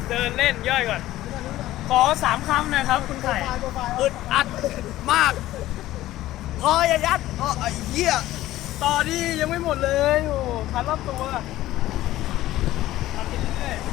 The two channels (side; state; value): right; quieter; 15.3 dB